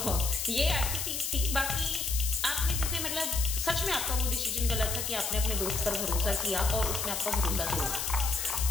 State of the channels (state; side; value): noise; left; hiss, 2 dB below the sound